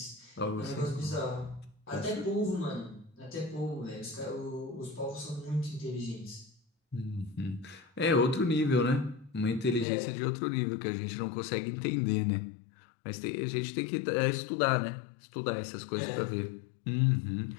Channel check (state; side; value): drops out; right; at 9.9 s